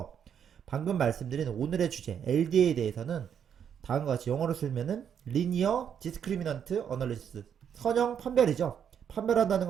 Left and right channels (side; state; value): left; quieter; 8.3 dB